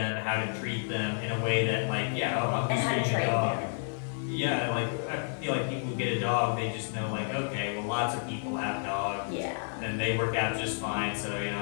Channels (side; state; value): right; silent; 57 dB below the other